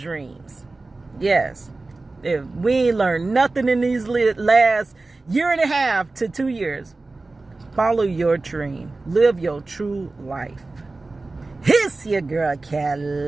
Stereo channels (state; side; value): quieter; left; 3.4 dB